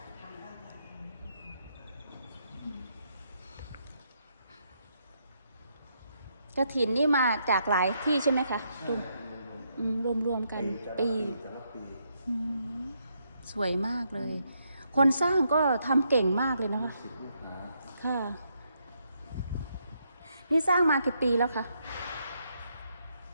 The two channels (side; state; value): both; inverted; correlation -0.77